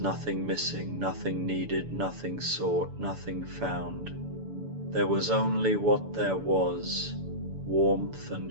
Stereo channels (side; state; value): left; late; 6.9 ms